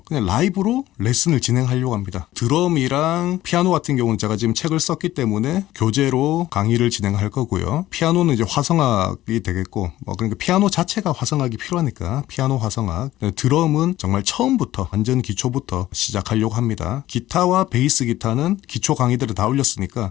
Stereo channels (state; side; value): quieter; right; 14.9 dB